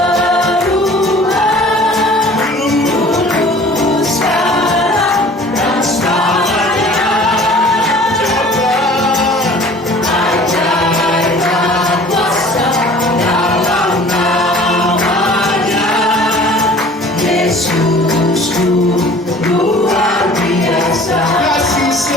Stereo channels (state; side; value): normal; both; correlation 0.48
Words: Yesusku luar biasa,